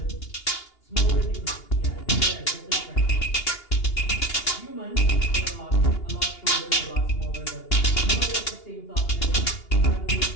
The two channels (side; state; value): right; late; 2.8 ms